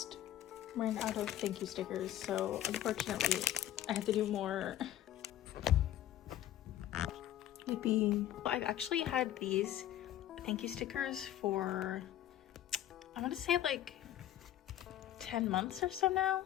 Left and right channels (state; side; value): quieter; right; 12.4 dB